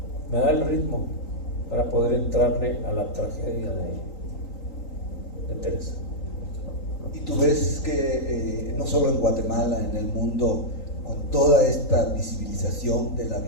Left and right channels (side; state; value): right; late; 3.9 ms